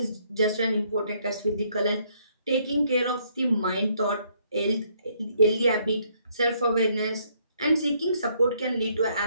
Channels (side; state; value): both; inverted; correlation -0.69